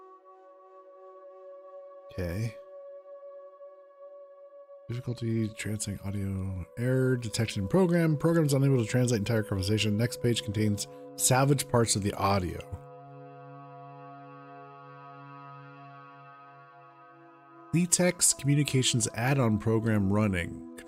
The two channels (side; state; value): both; identical; correlation 1.00